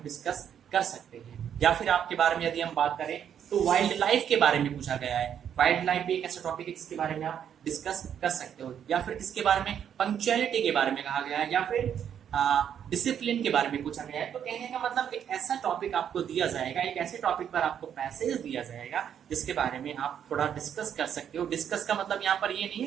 डिस्कस कर सकते हैं। या फिर आपके बारे में यदि हम बात करें तो वाइल्ड लाइफ के बारे में पूछा गया है। वाइल्ड लाइफ भी एक ऐसा टॉपिक है जिसके बारे में आप डिस्कस कर सकते हो। या फिर किसके बारे में? पंक्चुअलिटी के बारे में कहा गया है, या फिर डिसिप्लिन के बारे में पूछा गया है। तो कहने का मतलब एक ऐसा टॉपिक आपको दिया जाएगा, एक ऐसे टॉपिक पर आपको पैसेज दिया जाएगा जिसके बारे में आप थोड़ा डिस्कस कर सकते हो। डिस्कस का मतलब यहाँ पर ये नहीं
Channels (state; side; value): quieter; left; 8.9 dB